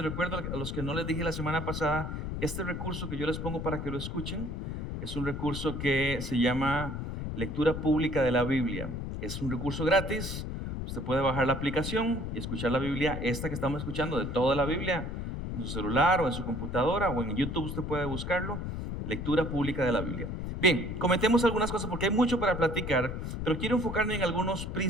recuerdo a los que no les dije la semana pasada, este recurso que yo les pongo para que lo escuchen es un recurso que se llama Lectura Pública de la Biblia. Es un recurso gratis, usted puede bajar la aplicación y escuchar la Biblia, esta que estamos escuchando, de toda la Biblia, en su celular o en su computadora o en YouTube usted puede buscarlo, Lectura Pública de la Biblia. Bien, comentemos algunas cosas porque hay mucho para platicar, pero quiero enfocarme en algunos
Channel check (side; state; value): left; noise; rumble, 5 dB below the sound